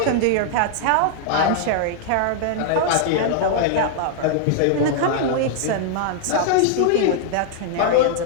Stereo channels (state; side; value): different; both; correlation -0.01